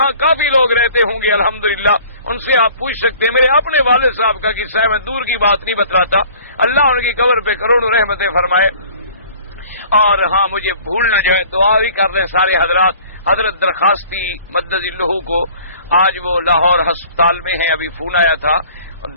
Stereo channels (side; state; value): both; inverted; correlation -0.50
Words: کافی لوگ رہتے ہوں گے الحمدللہ، ان سے آپ پوچھ سکتے ہیں۔ میرے اپنے والد صاحب کا قصہ ہے، میں دور کی بات نہیں بتلاتا، اللہ ان کی قبر پہ کروڑوں رحمتیں فرمائے۔ اور ہاں مجھے بھول نہ جائے، دعا بھی کر دیں سارے حضرات۔ حضرت درخواستی مدد اللہ کو آج وہ لاہور ہسپتال میں ہیں، ابھی فون آیا تھا،